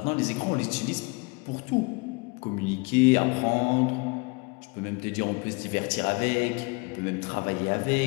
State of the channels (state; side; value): quieter; right; 28.8 dB